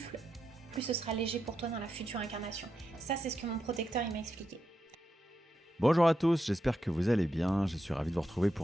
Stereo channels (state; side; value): normal; both; correlation 0.86